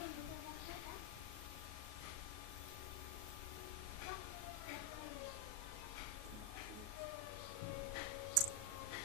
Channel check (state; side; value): late; left; 38 ms